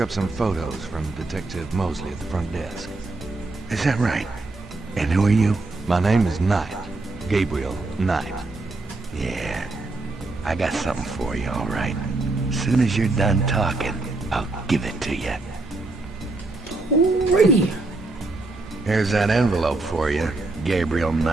up some photos from Detective Mosley at the front desk. Is that right? And who are you? My name is Knight. Gabriel Knight. Yeah, I got something for you, all right. As soon as you're done talking, I'll give it to you. Alrighty. Here's that envelope for you, Gabriel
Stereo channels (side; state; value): left; quieter; 3.2 dB